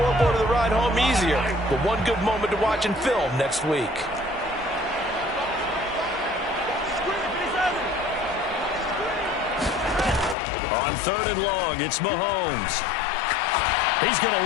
of the ride home easier, but one good moment to watch in film next week. On 3rd and long, it's Mahomes. He's going to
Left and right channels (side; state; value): right; drops out; at 10.4 s